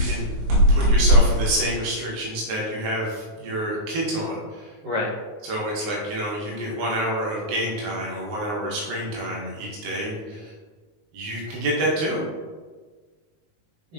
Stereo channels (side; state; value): left; late; 19 ms